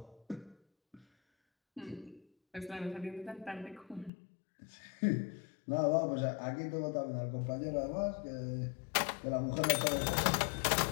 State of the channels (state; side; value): drops out; right; at 4.1 s